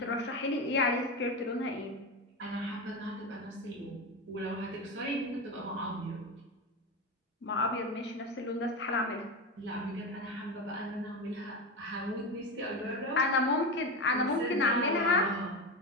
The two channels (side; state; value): both; normal; correlation 0.18